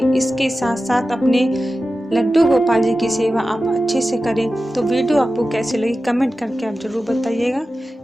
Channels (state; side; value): normal; both; correlation 0.93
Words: इसके साथ साथ अपने लड्डू गोपाल जी की सेवा आप अच्छे से करें। तो वीडियो आपको कैसे लगी कमेंट करके आप जरूर बताइएगा।